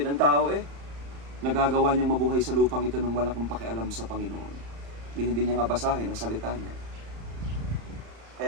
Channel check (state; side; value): late; left; 35 ms